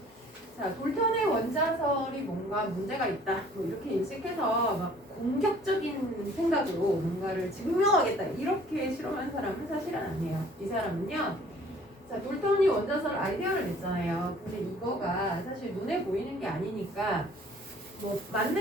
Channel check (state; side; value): normal; both; correlation 0.54